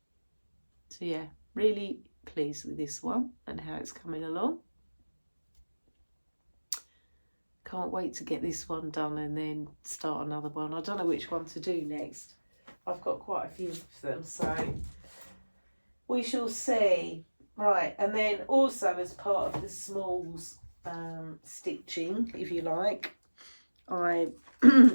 So yeah, really pleased with this one and how it's coming along. Can't wait to get this one done and then start another one. I don't know which one to do next. I've got quite a few of them, so we shall see. Right, and then also as part of the smalls stitching, if you like, I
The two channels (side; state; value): both; inverted; correlation -1.00